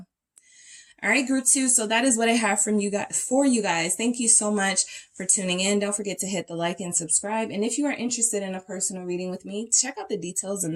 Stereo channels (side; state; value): both; identical; correlation 1.00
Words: All right, group 2. So that is what I have from you guys for you guys. Thank you so much for tuning in. Don't forget to hit the like and subscribe. And if you are interested in a personal reading with me, check out the details in